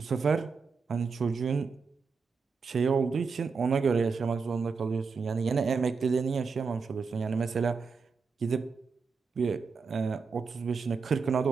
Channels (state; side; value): quieter; left; 5.1 dB